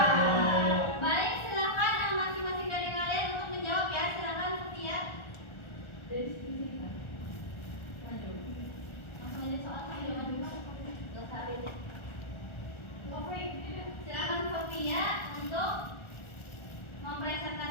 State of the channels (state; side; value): late; right; 1.4 ms